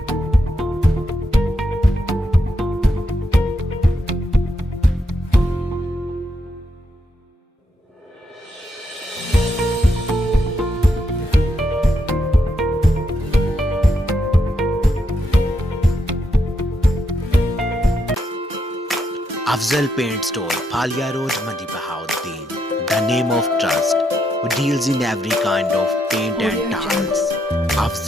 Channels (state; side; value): normal; both; correlation 0.80